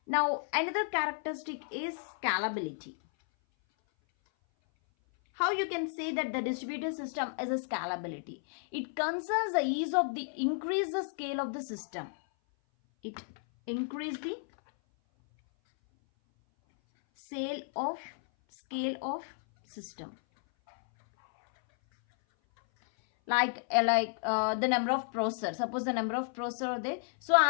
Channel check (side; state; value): right; silent; 56 dB below the other